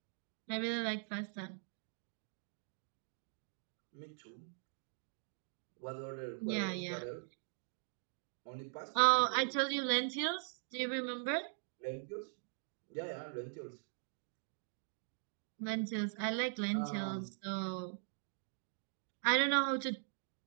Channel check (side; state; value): left; silent; digital silence